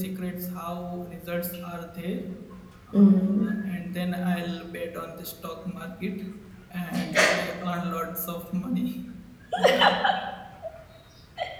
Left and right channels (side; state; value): both; identical; correlation 1.00